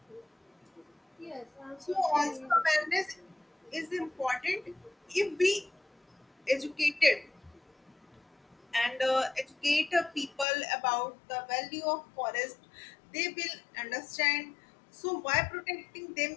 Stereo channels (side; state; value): right; drops out; at 10.5 s